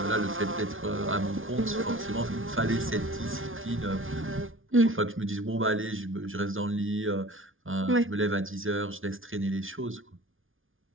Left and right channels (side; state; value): left; late; 0.58 ms